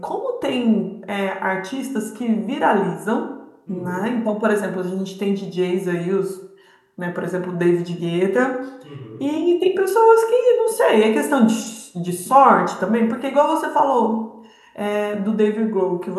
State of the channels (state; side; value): identical; both; correlation 1.00